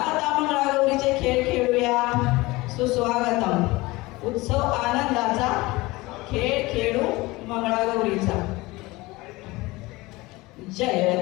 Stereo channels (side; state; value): right; quieter; 21.4 dB